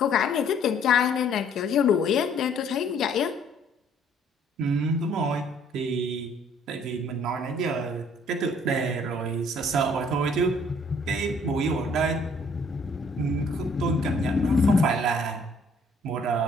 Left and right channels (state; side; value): normal; both; correlation 0.60